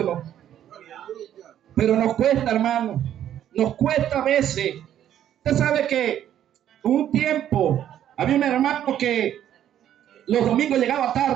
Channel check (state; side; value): quieter; left; 10.8 dB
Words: Pero nos cuesta, hermano. Nos cuesta a veces. Usted sabe que un tiempo había un hermano que los domingos llegaba